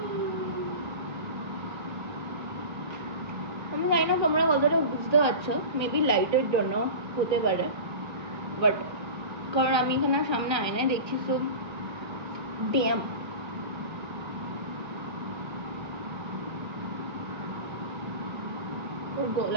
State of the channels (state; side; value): late; left; 1.2 ms